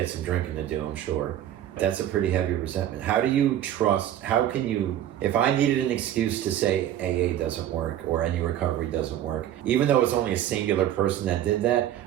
some drinking to do, I'm sure. That's a pretty heavy resentment. How can you, if I needed an excuse to say AA doesn't work or any recovery doesn't work, even though it's only a singular person that did that,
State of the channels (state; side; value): quieter; left; 11.7 dB